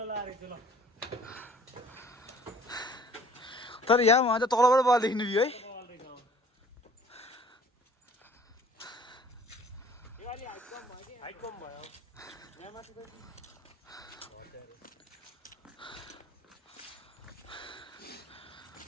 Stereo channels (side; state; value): both; normal; correlation 0.53